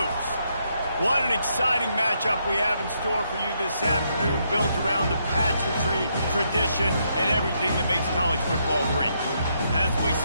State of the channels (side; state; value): both; inverted; correlation -0.76